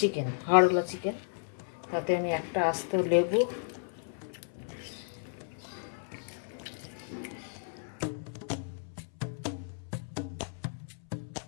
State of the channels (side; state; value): right; silent; 56 dB below the other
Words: হাড়ওয়ালা চিকেন। তাতে আমি একটা আস্ত লেবু,